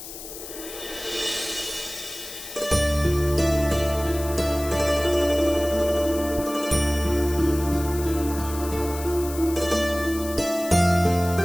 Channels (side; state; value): left; noise; hiss, 12 dB below the sound